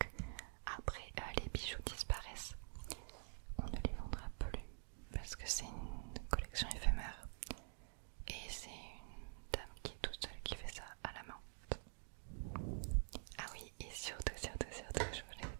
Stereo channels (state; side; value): silent; left; digital silence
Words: Après les bijoux disparaissent. On ne les vendra plus parce que c'est une collection éphémère. Et c'est une dame qui est toute seule qui fait ça à la main. Ah oui, et surtout, je